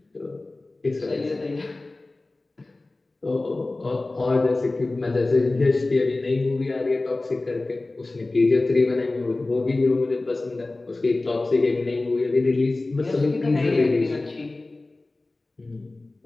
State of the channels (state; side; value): quieter; right; 3.1 dB